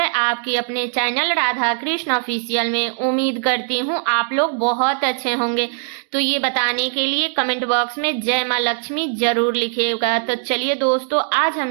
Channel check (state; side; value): silent; left; 66 dB below the other